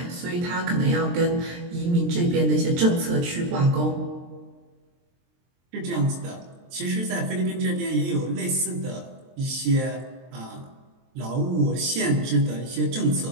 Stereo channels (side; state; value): left; late; 23 ms